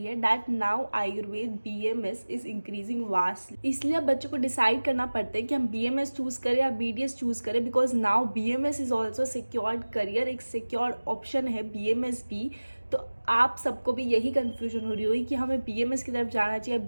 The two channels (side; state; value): both; inverted; correlation -1.00